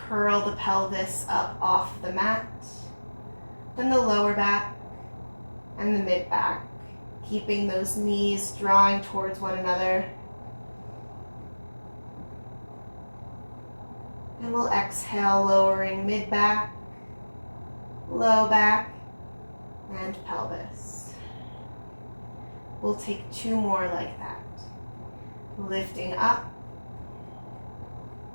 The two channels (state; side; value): inverted; both; correlation -1.00